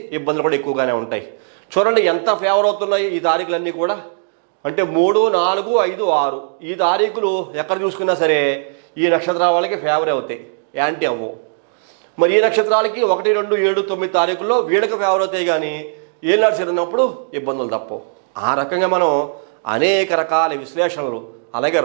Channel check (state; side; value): silent; left; digital silence